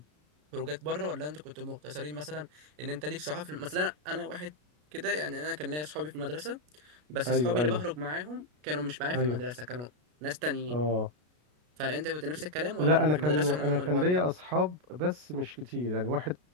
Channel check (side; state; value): left; late; 33 ms